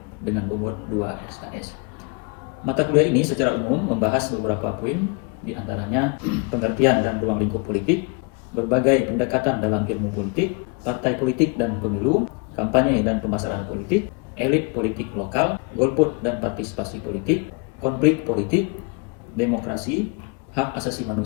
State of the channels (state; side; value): quieter; right; 33.2 dB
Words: dengan bobot 2 SKS. Mata kuliah ini secara umum membahas beberapa poin, di antaranya pengertian dan ruang lingkup politik, berbagai pendekatan dalam ilmu politik, partai politik dan pemilu, kampanye dan pemasaran politik, elit politik lokal, golput dan partisipasi politik, konflik politik, demokrasi, hak asasi